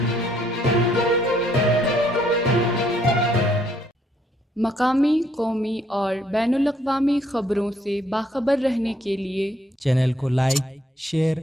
مقامی، قومی اور بین الاقوامی خبروں سے باخبر رہنے کے لیے چینل کو لائک، شیئر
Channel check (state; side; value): normal; both; correlation 0.68